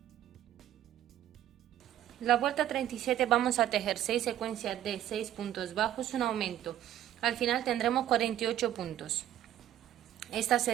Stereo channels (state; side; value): quieter; left; 12.1 dB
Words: La vuelta 37 vamos a tejer 6 secuencias de 6 puntos bajos, un aumento. Al final tendremos 48 puntos. Esta